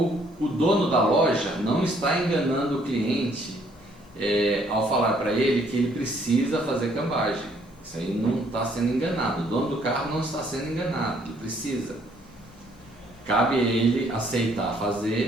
dono da loja não está enganando o cliente ao falar para ele que ele precisa fazer cambagem. Isso aí não está sendo enganado. O dono do carro não está sendo enganado, ele precisa. Cabe a ele aceitar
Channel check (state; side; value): normal; both; correlation 0.65